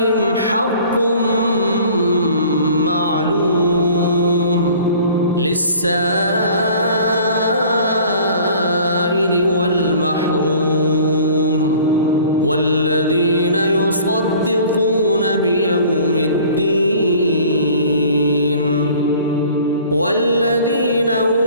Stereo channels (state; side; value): inverted; both; correlation -0.49